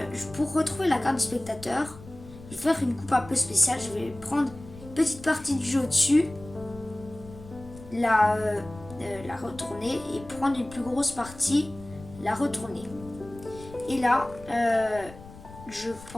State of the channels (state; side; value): noise; left; rumble, 17 dB below the sound